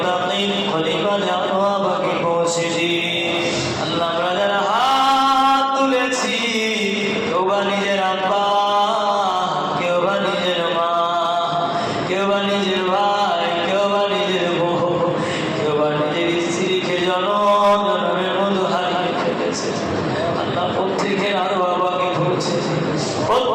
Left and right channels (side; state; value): both; identical; correlation 1.00